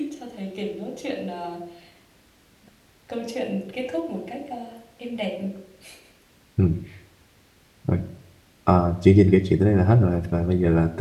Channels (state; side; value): identical; both; correlation 1.00